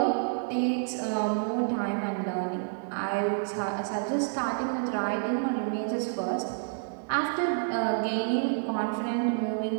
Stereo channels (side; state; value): left; silent; digital silence